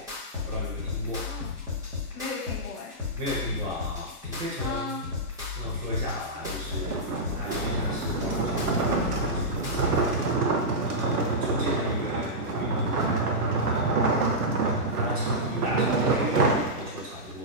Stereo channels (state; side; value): normal; both; correlation -0.11